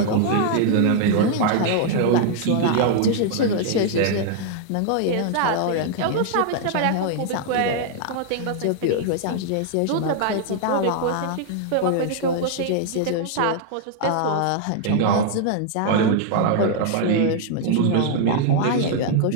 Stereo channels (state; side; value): different; both; correlation 0.00